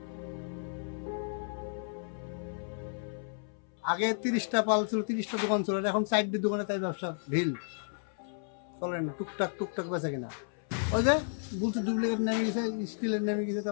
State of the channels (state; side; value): silent; right; 56 dB below the other